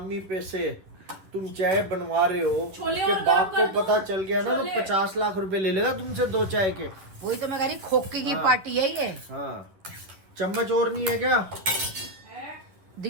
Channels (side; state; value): left; late; 11 ms